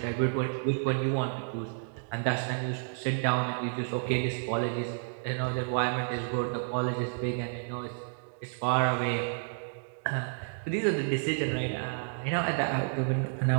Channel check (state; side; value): silent; left; digital silence